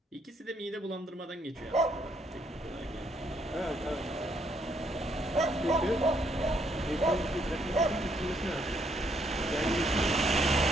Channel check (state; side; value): normal; both; correlation 0.71